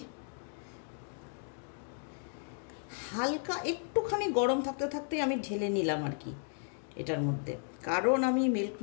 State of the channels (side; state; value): right; silent; 55 dB below the other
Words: হালকা একটুখানি গরম থাকতে থাকতেই আমি ঢেলে নিলাম আর কি এটার মধ্যে, কারণ আমি